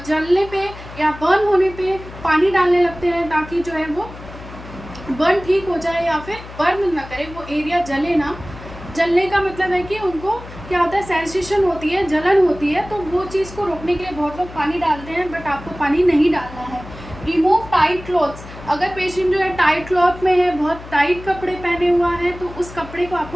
जलने पे या बर्न होने पे पानी डालने लगते हैं ताकि जो है वो बर्न ठीक हो जाए या फिर बर्न ना करे, वो एरिया जले ना। जलने का मतलब है कि उनको क्या होता है, सेंसेशन होती है, जलन होती है, तो वो चीज़ को रोकने के लिए बहुत लोग पानी डालते हैं, बट आपको पानी नहीं डालना है। Remove tight clothes. अगर पेशेंट जो है टाइट क्लॉथ में है, बहुत टाइट कपड़े पहने हुआ है, तो उस कपड़े को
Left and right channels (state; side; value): noise; left; hum, 15 dB below the sound